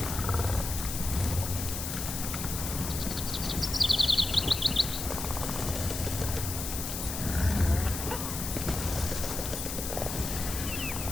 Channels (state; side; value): noise; left; hiss, 5 dB below the sound